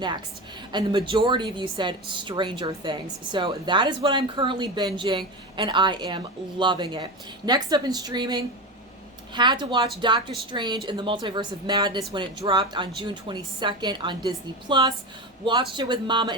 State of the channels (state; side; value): normal; both; correlation 0.22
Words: and the majority of you said Stranger Things. So that is what I'm currently binging, and I am loving it. Next up in streaming, had to watch Doctor Strange in the Multiverse of Madness when it dropped on June 22nd on Disney+. Watched it with Mama